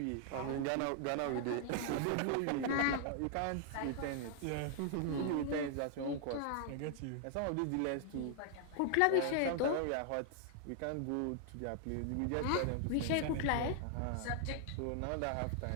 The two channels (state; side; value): different; both; correlation 0.00